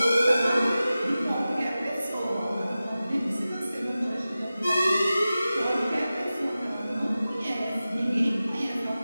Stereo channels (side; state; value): both; inverted; correlation -0.95